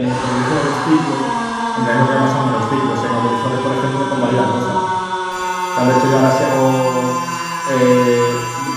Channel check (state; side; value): identical; both; correlation 1.00